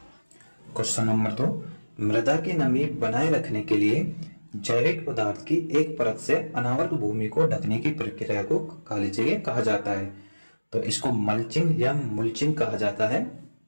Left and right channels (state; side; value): inverted; both; correlation -1.00